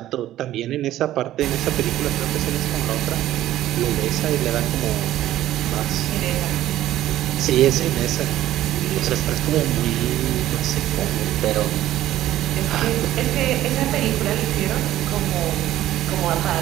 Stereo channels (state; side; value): quieter; left; 13.7 dB